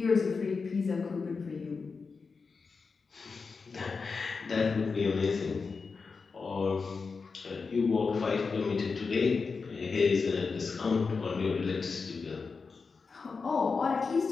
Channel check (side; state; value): right; quieter; 4.8 dB